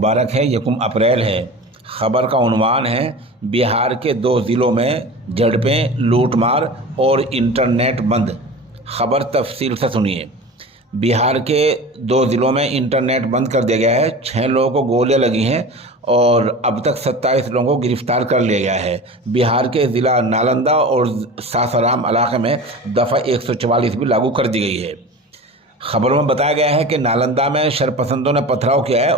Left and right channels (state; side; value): normal; both; correlation 0.34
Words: है, यकुम अप्रैल है। ख़बर का उन्वान है बिहार के 2 ज़िलों में झड़पें, लूटमार और इंटरनेट बंद। ख़बर तफसील से सुनिए। बिहार के 2 ज़िलों में इंटरनेट बंद कर दिया गया है। 6 लोगों को गोलियां लगी हैं और अब तक 27 लोगों को गिरफ्तार कर लिया गया है। बिहार के ज़िला नालंदा और सासाराम इलाके में दफ़ा 144 भी लागू कर दी गई है। खबरों में बताया गया है कि नालंदा में शरपसंदों ने पथराव किया है